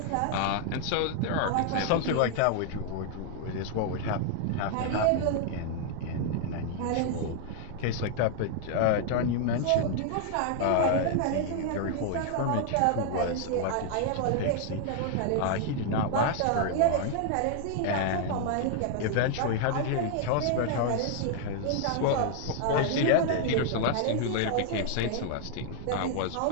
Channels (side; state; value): both; different; correlation 0.00